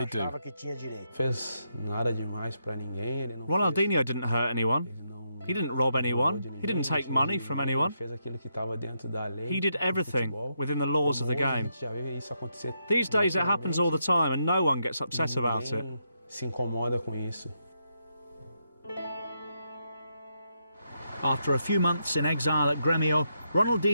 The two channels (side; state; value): both; inverted; correlation -0.81